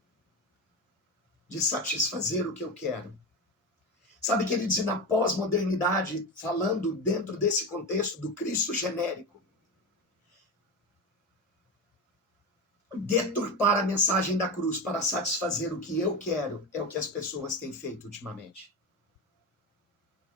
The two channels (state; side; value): normal; both; correlation 0.20